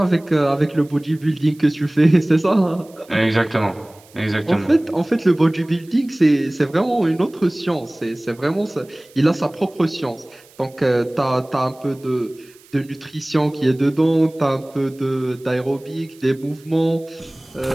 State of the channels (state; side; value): noise; right; hiss, 27 dB below the sound